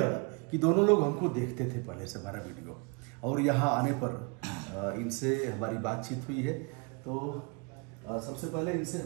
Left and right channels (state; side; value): quieter; left; 31.4 dB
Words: कि दोनों लोग हमको देखते थे पहले से हमारा वीडियो, और यहाँ आने पर इनसे हमारी बातचीत हुई है। तो सबसे पहले इनसे